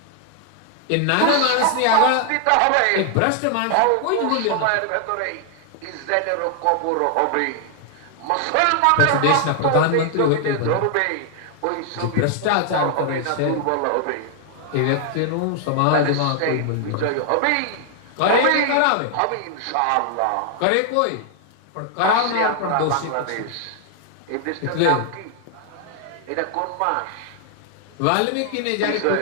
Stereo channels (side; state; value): both; different; correlation 0.00